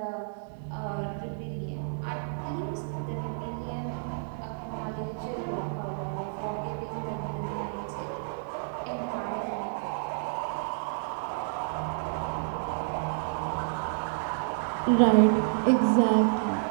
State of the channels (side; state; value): left; silent; digital silence